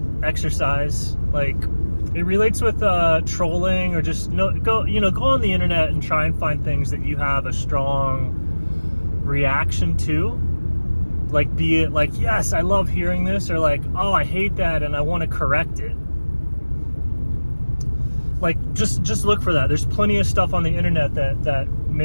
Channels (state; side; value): inverted; both; correlation -1.00